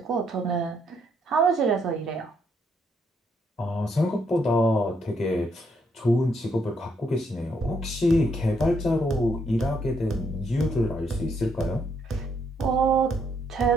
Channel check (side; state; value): both; normal; correlation 0.74